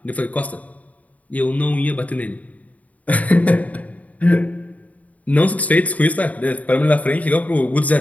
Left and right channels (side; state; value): right; late; 0.071 ms